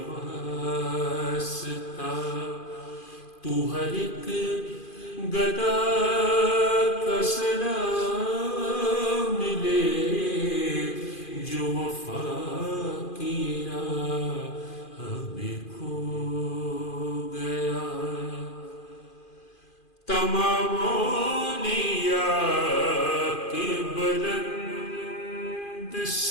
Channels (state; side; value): late; right; 2.4 ms